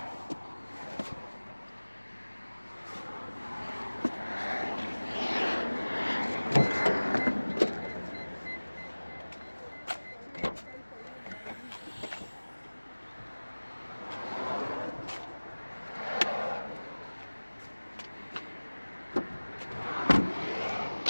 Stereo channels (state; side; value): inverted; both; correlation -1.00